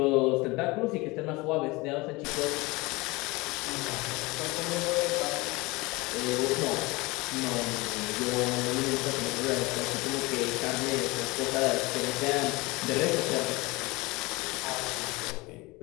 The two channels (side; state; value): right; quieter; 23.5 dB